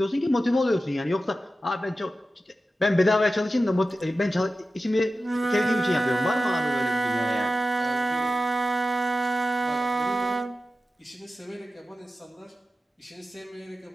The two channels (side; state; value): both; normal; correlation 0.93